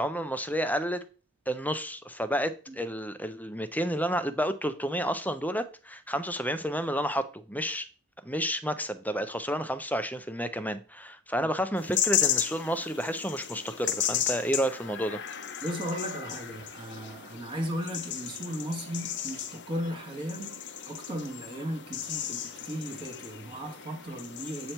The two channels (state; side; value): normal; both; correlation 0.53